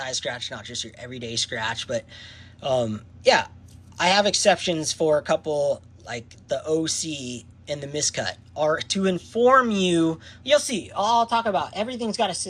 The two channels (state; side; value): identical; both; correlation 1.00